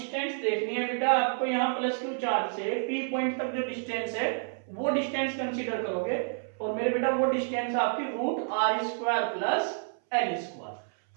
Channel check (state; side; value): silent; left; 58 dB below the other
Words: देखनी है बेटा आपको यहाँ प्लस Q चार्ज से P पॉइंट तक जो डिस्टेंस है वो डिस्टेंस कंसीडर करोगे, और मेरे बेटा वो डिस्टेंस आपकी root R square plus L square.